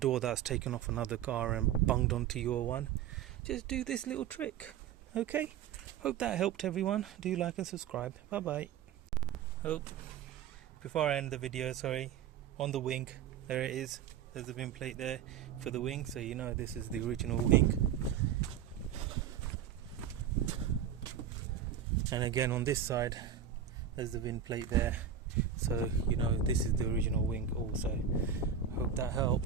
that's taken off another car and bunged onto your one. Just do this little trick. Okay, hope that helped everyone. Do like and subscribe. Bye bye. Before I end the video, on the wing, there it is, there's a VIN plate there for the wing, so you know this is the original wing. And again on this side, there's the VIN plate there, so you know this is the original wing also. Hope that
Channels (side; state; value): left; quieter; 8.4 dB